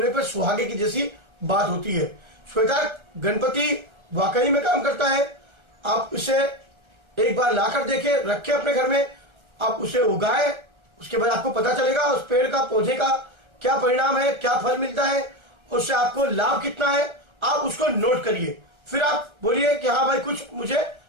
पर सुहागे की जैसी बात होती है। श्वेतार्क गणपति वाकई में काम करता है। आप इसे एक बार लाकर देखें, रखें अपने घर में, आप उसे उगाएं, उसके बाद आपको पता चलेगा उस पेड़ का पौधे का क्या परिणाम है, क्या फल मिलता है, उससे आपको लाभ कितना है। आप उसको नोट करिए, फिर आप बोलिए कि हाँ भाई कुछ मुझे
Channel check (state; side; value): late; left; 1.3 ms